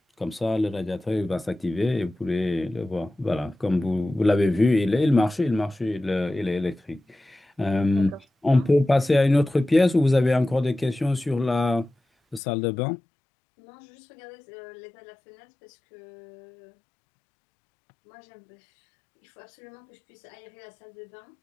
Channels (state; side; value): drops out; right; at 12.4 s